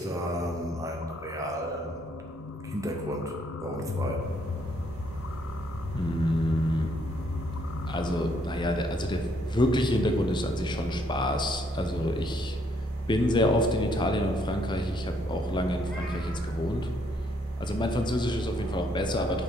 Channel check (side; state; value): both; normal; correlation 0.69